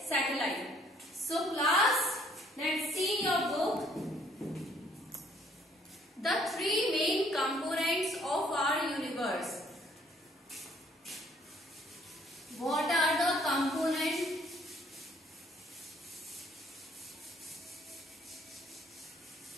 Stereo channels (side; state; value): both; normal; correlation 0.62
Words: satellite. So class, let's see in your book the three main components of our universe. What are the components?